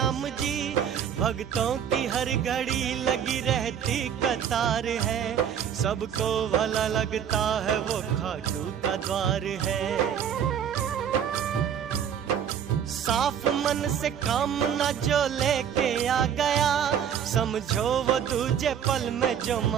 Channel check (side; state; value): left; quieter; 8.6 dB